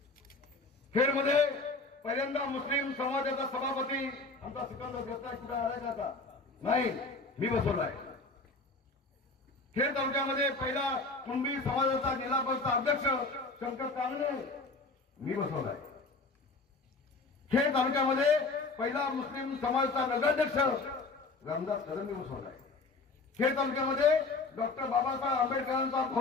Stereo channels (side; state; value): right; quieter; 3.6 dB